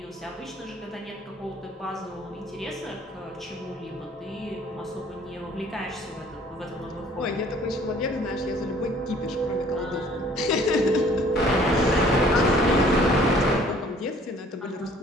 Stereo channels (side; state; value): both; normal; correlation 0.56